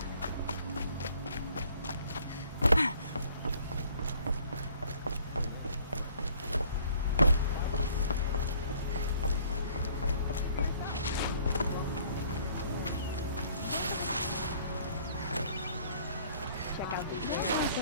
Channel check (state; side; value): inverted; both; correlation -0.58